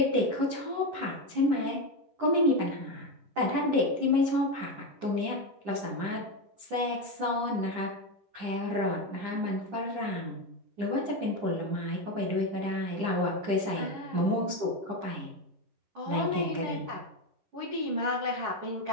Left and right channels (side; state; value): left; late; 9.9 ms